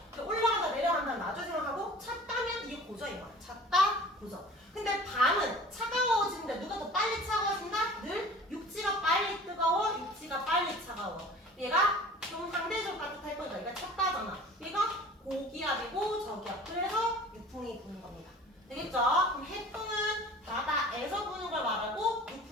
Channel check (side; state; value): both; normal; correlation 0.44